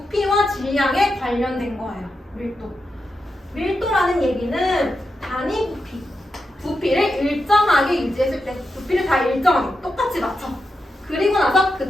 질량에 관련된 거예요. 밀도라는 얘기는 단위 부피를 일정하게 유지했을 때, 부피를 다 일정하게 똑같이 맞춰. 그리고 나서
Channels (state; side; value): normal; both; correlation 0.87